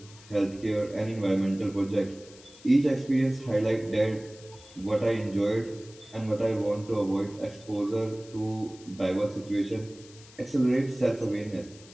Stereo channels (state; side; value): noise; left; hiss, 22 dB below the sound